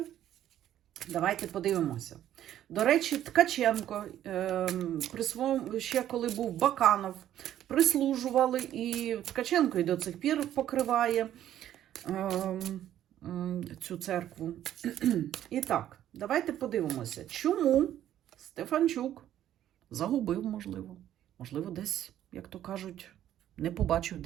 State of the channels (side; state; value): left; quieter; 11.7 dB